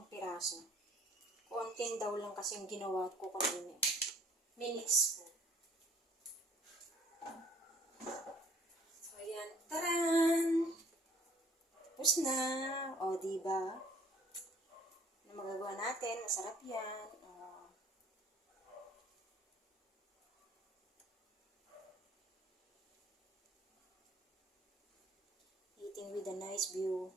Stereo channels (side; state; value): both; normal; correlation 0.56